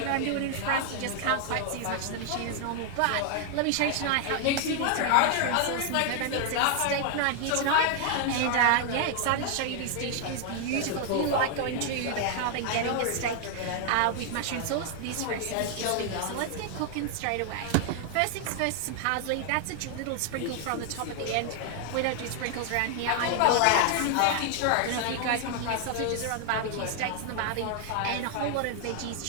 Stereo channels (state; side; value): different; both; correlation 0.00